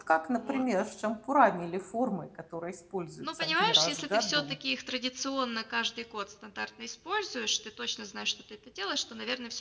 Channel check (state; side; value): identical; both; correlation 1.00